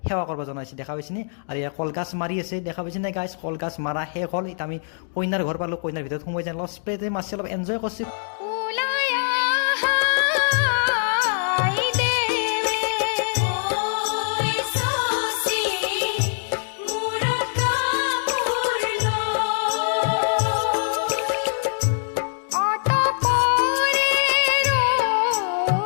সেৱা কৰিব জনাইছে, দেখা পাইছে নে? আৰু এয়া কলগাছ মাৰি আছে, দেখা পাইছে নে গাইছ? কলগাছ মাৰা শেষ হ'ল। এতিয়া আমি কইনাৰ ঘৰ পালোঁ, কইনাৰ ভিতৰত সোমাই যাম, অলপ স্প্ৰেতে মাছ অলপ এনজয় কৰিছোঁ।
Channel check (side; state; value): right; silent; digital silence